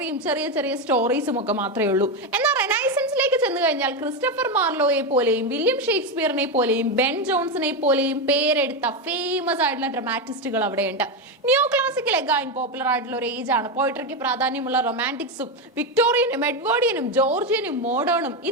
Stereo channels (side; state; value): both; normal; correlation 0.11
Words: ചെറിയ ചെറിയ സ്റ്റോറീസും ഒക്കെ മാത്രമേ ഉള്ളൂ. എന്നാൽ റെനൈസൻസിലേക്ക് ചെന്ന് കഴിഞ്ഞാൽ ക്രിസ്റ്റഫർ മാർലോയെ പോലെയും വില്യം ഷേക്സ്പിയറിനെ പോലെയും ബെൻ ജോൺസനെ പോലെയും പേരെടുത്ത ഫേമസ് ആയിട്ടുള്ള ഡ്രാമാറ്റിസ്റ്റുകൾ അവിടെയുണ്ട്. നിയോ ക്ലാസിക്കൽ എഗൈൻ പോപ്പുലർ ആയിട്ടുള്ള ഒരു ഏജ് ആണ്. പോയിട്രിക്ക് പ്രാധാന്യമുള്ള റൊമാൻറ്റിക്സും വിക്ടോറിയനും എഡ്വേർഡിയനും ജോർജിയനും മോഡേണും